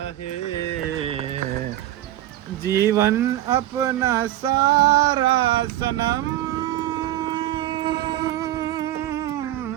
હે જીવન અપના સારા સનમ.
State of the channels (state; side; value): quieter; left; 13.9 dB